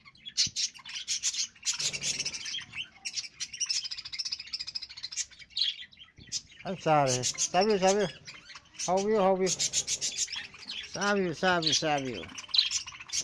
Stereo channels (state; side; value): identical; both; correlation 1.00